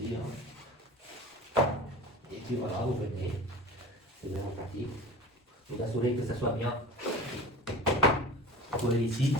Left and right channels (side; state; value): both; normal; correlation 0.36